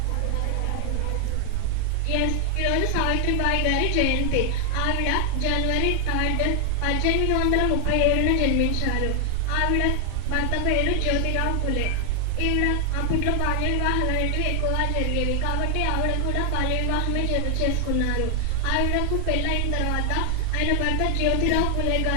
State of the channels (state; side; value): different; both; correlation 0.00